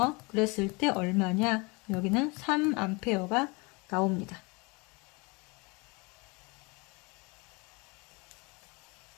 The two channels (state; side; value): quieter; right; 27.7 dB